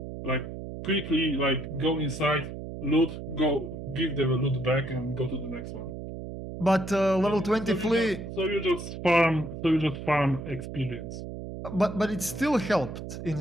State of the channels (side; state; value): right; noise; hum, 9 dB below the sound